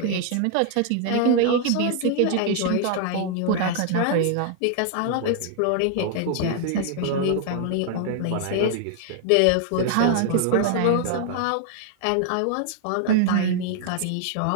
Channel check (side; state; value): both; different; correlation 0.00